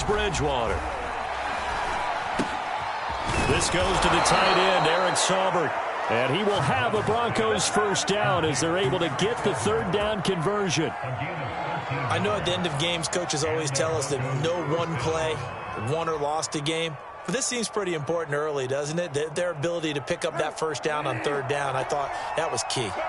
Bridgewater. This goes to the tight end, Eric Saubert. And he will have a Broncos first down as they're able to get the third down conversion. I know at the end of games, coaches always tell us that no one play won or lost a game. But this seems pretty important early, doesn't it? Their ability to pick up that first down on third down, I thought that was key.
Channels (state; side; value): identical; both; correlation 1.00